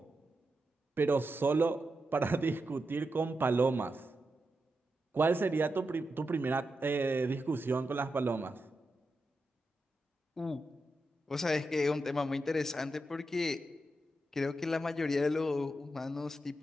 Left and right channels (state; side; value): normal; both; correlation 0.87